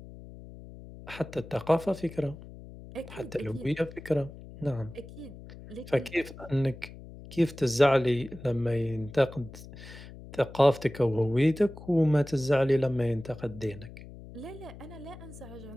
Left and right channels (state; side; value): noise; left; hum, 16 dB below the sound